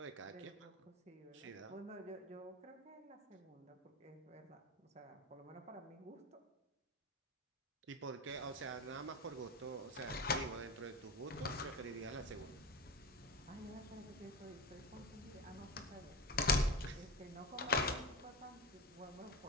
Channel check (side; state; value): both; normal; correlation 0.24